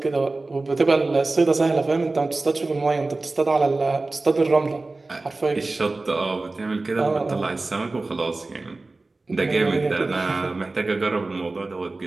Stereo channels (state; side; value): quieter; left; 3.3 dB